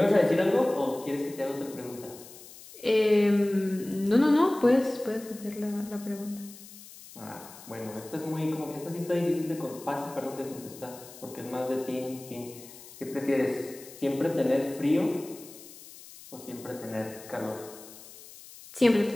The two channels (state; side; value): noise; left; hiss, 18 dB below the sound